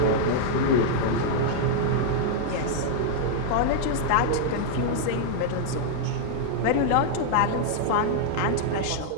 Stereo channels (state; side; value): different; both; correlation -0.01